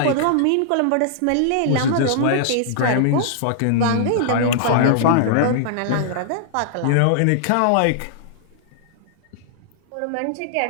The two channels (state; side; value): different; both; correlation -0.01